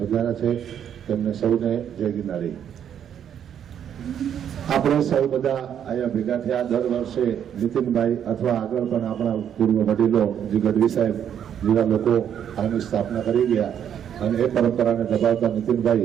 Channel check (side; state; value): left; quieter; 9.1 dB